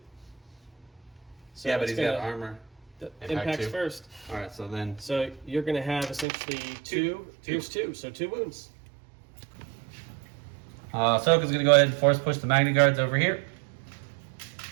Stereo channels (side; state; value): left; drops out; at 6.2 s